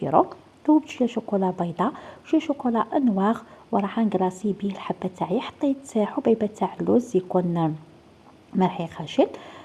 ذوبت شوية شوكولا بيضاء وشوية شوكولا نواغ وراح نكلاصي بيه الحبة تاعي. حطيت حبيبة تاع اللوز يكون مرحي خشن.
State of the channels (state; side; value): identical; both; correlation 1.00